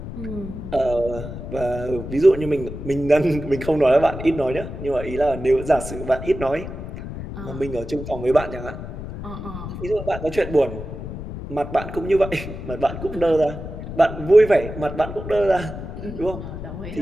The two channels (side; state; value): left; noise; rumble, 9 dB below the sound